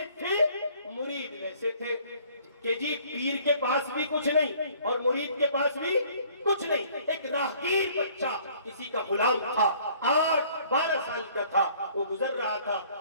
تھے مرید ویسے تھے کہ جی پیر کے پاس بھی کچھ نہیں اور مرید کے پاس بھی کچھ نہیں. ایک راہگیر بچہ کسی کا غلام تھا, 8-12 سال کا تھا, وہ گزر رہا تھا.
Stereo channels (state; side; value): inverted; both; correlation -0.57